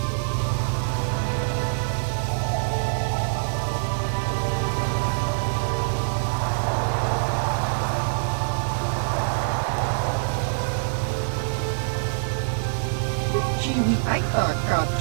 chiwi aita ka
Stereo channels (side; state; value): left; silent; 62 dB below the other